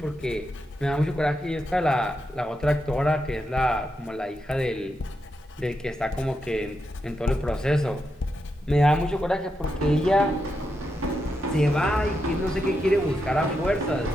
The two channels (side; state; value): both; normal; correlation 0.85